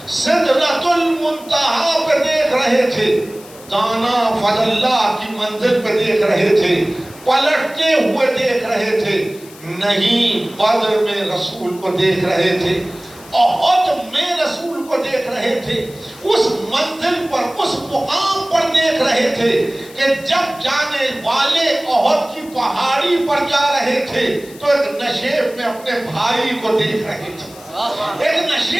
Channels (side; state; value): left; noise; hiss, 21 dB below the sound